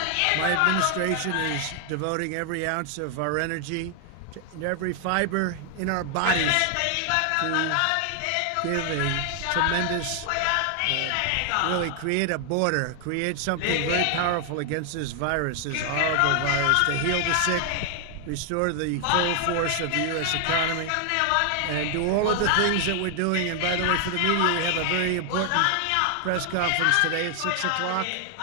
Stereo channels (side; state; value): both; different; correlation 0.00